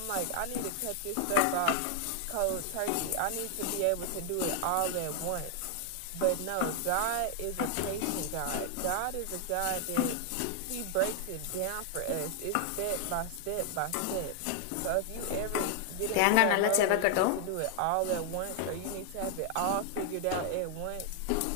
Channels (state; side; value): different; both; correlation 0.00